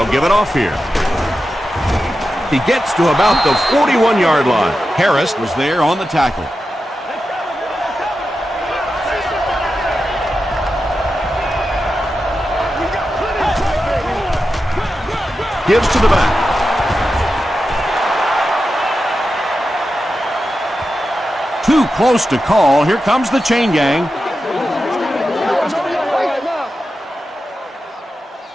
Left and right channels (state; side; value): normal; both; correlation 0.91